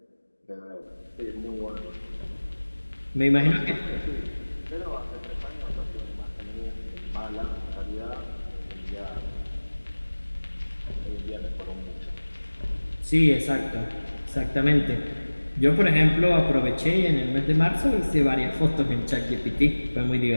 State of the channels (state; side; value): inverted; both; correlation -1.00